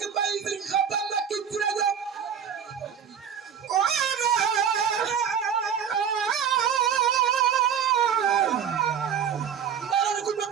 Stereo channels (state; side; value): quieter; left; 8.0 dB